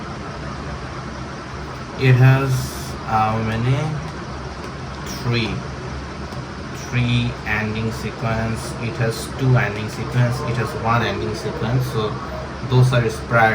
it has how many? Three ending sequence. It has 2 ending sequence. It has 1 ending sequence. So those are its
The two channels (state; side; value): identical; both; correlation 1.00